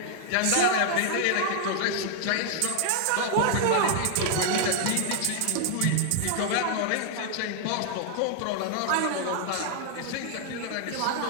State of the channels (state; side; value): different; both; correlation 0.00